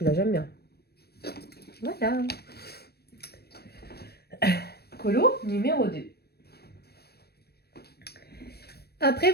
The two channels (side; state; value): right; late; 0.47 ms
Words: j'aime bien. Voilà. Colo numéro 2. Après,